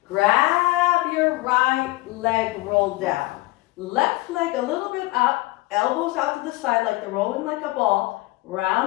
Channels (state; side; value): quieter; right; 20.4 dB